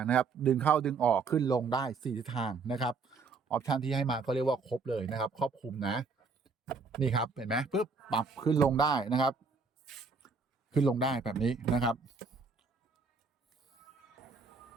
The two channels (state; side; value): quieter; left; 4.6 dB